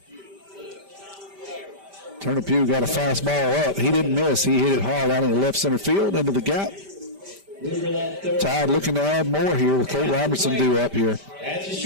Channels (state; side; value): late; left; 5.1 ms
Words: Turner Pugh got a fastball up. He didn't miss. He hit it hard out in the left center field into the gap. Tide looking to add more here with Colt Robertson due up here.